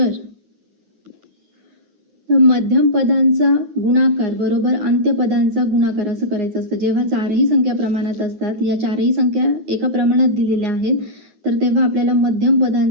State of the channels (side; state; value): left; late; 9.6 ms